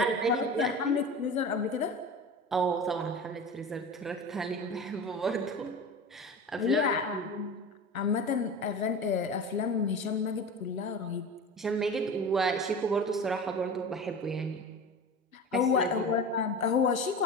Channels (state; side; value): normal; both; correlation 0.31